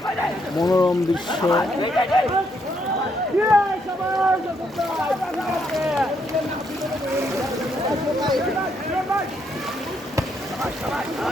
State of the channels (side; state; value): both; normal; correlation 0.75